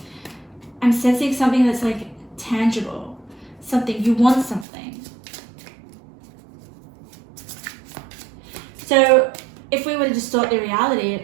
I'm sensing something that's, like, tangible. Something, you want something. So if we were to distort the reality,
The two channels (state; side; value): drops out; left; at 4.7 s